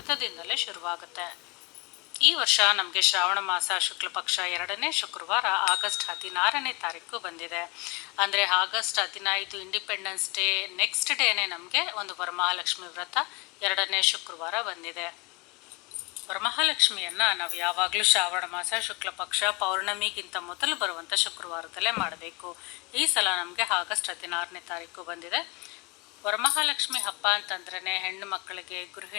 ಶುರುವಾಗುತ್ತೆ. ಈ ವರ್ಷ ನಮಗೆ ಶ್ರಾವಣ ಮಾಸ ಶುಕ್ಲ ಪಕ್ಷ 2ನೇ ಶುಕ್ರವಾರ ಆಗಸ್ಟ್ 16ನೇ ತಾರೀಕು ಬಂದಿದೆ. ಅಂದರೆ ಆಗಸ್ಟ್ 15 ಇಂಡಿಪೆಂಡೆನ್ಸ್ ಡೇ ನೆಕ್ಸ್ಟ್ ಡೇನೇ ನಮಗೆ ಒಂದು ವರಮಹಾಲಕ್ಷ್ಮಿ ವ್ರತ 2ನೇ ಶುಕ್ರವಾರ ಬಂದಿದೆ. ವರಮಹಾಲಕ್ಷ್ಮಿಯನ್ನು ನಾವು ಯಾವಾಗಲೂ ಶ್ರಾವಣ ಮಾಸ ಶುಕ್ಲ ಪಕ್ಷ ಪೌರ್ಣಮಿಗಿಂತ ಮೊದಲು ಬರುವಂಥ ಶುಕ್ರವಾರದಲ್ಲೇ ಮಾಡಬೇಕು. ಈ ಸಲ ನಮಗೆ ಆಗಸ್ಟ್ 16ನೇ ತಾರೀಕು ಬಂದಿದೆ. ವರಮಹಾಲಕ್ಷ್ಮಿ ಹಬ್ಬ ಅಂತಂದ್ರೇ ಹೆಣ್ಣು ಮಕ್ಕಳಿಗೆ,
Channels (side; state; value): right; quieter; 27.2 dB